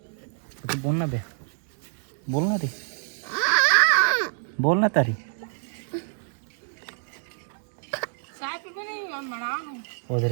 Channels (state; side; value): silent; left; digital silence